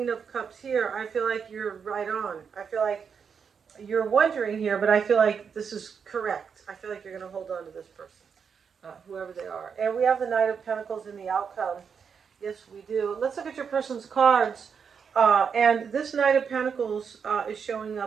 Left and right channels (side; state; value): left; quieter; 6.5 dB